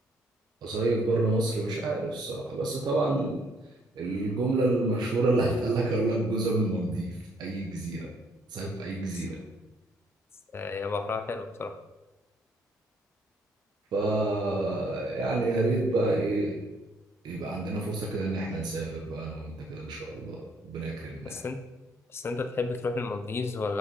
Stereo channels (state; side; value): normal; both; correlation 0.67